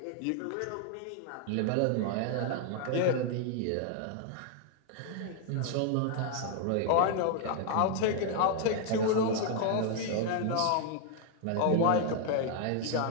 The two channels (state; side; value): different; both; correlation 0.00